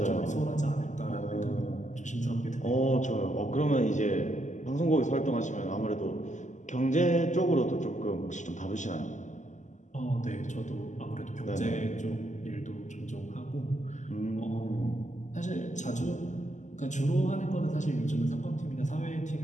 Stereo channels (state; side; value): late; right; 0.35 ms